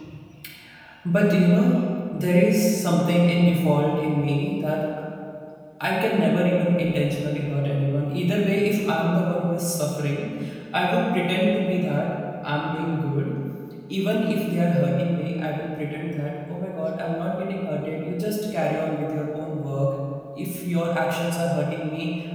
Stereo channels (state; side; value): identical; both; correlation 1.00